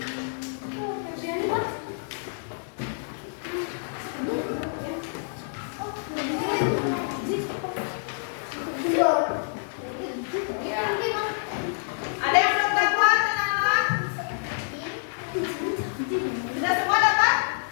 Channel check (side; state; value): right; silent; 57 dB below the other